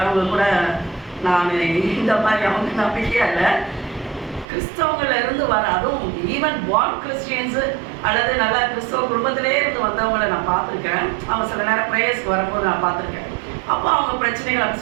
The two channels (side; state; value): left; drops out; at 4.5 s